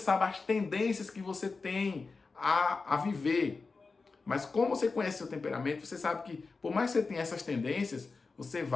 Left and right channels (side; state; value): right; quieter; 4.2 dB